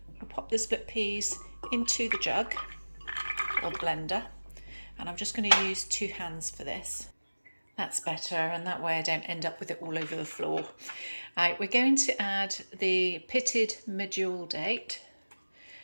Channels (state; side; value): inverted; both; correlation -1.00